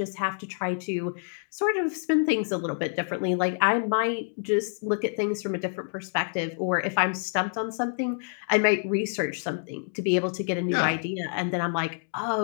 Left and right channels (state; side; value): silent; right; 60 dB below the other